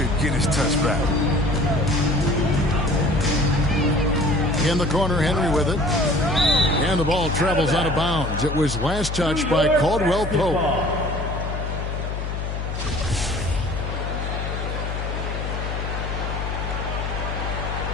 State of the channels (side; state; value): left; noise; hum, 4 dB below the sound